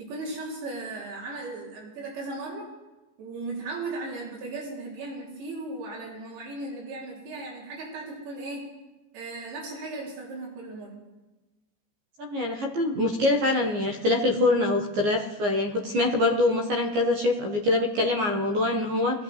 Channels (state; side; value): late; left; 14 ms